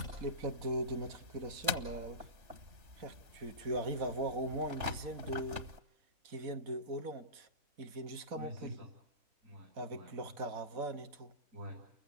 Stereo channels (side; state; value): left; late; 3.4 ms